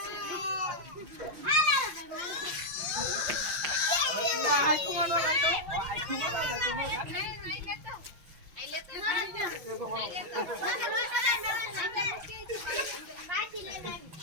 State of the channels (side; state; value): left; late; 5.7 ms